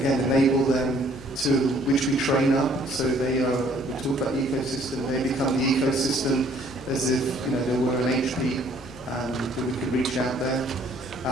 enable them to, which we train up. So they are, we talk about the ecosystem, they become the ecosystem as if, they were an HP, that we could reach out there.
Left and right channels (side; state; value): both; normal; correlation 0.60